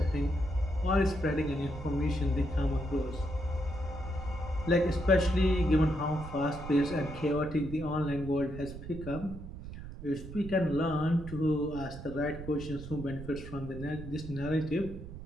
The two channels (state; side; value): noise; right; rumble, 11 dB below the sound